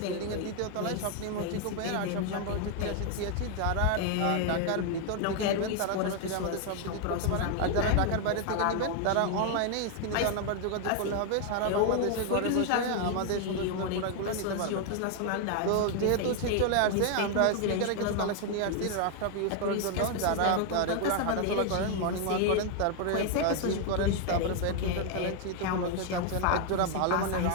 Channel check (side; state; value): both; different; correlation 0.01